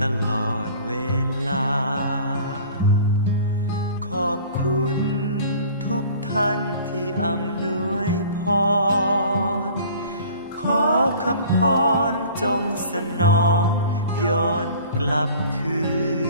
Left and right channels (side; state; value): both; inverted; correlation -0.46